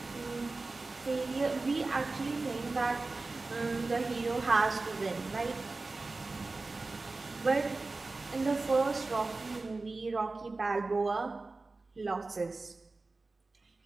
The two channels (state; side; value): quieter; left; 3.5 dB